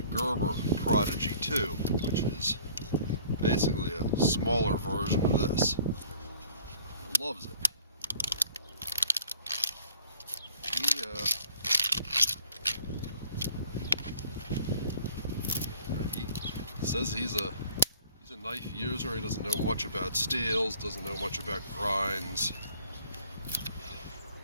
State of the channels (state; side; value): inverted; both; correlation -0.53